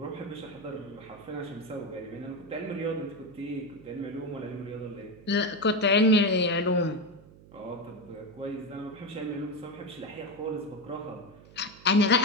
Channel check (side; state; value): right; noise; hum, 22 dB below the sound